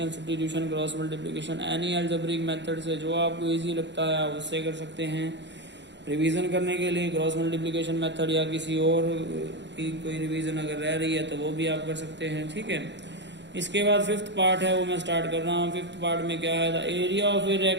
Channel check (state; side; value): late; left; 0.52 ms